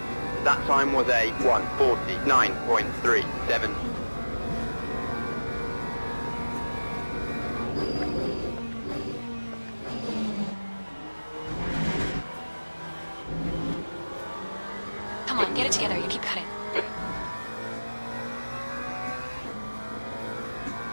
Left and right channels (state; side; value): inverted; both; correlation -1.00